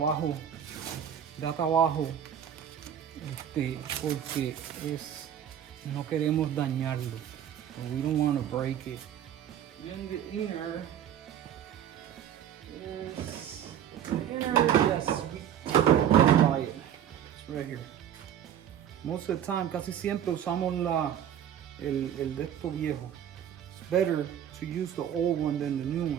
Da trabajo. Porque no queremos dañarlo. So we don't want to break it. Then the inner is. Yes, we buy it. It's right here. Most of the time, casi siempre usamos el de esto viejo. It's better to use the old one than the new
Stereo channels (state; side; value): quieter; left; 9.7 dB